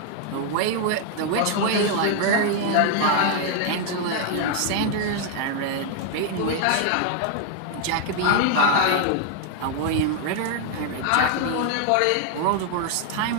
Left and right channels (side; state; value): both; different; correlation 0.00